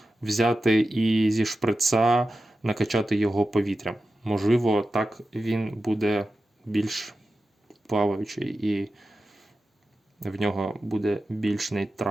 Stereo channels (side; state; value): both; normal; correlation 0.92